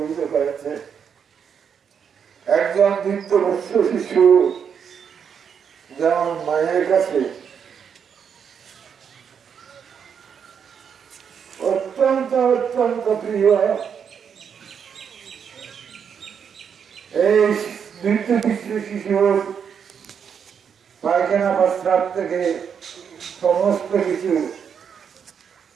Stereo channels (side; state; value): left; quieter; 7.3 dB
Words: করেছে। একজন বৃদ্ধবস্ত শিশু যেমন মায়ের কাছে অত্যন্ত অত্যন্ত প্রিয়, এই বৃদ্ধ শিশুর পায়খানা প্রস্রাব থেকে সমস্ত কিছু